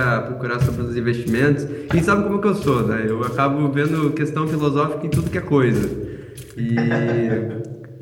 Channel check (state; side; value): identical; both; correlation 1.00